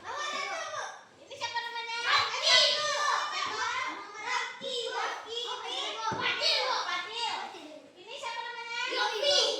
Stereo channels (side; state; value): both; identical; correlation 1.00